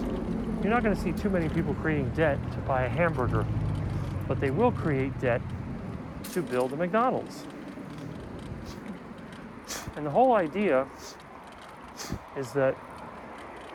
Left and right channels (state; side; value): identical; both; correlation 1.00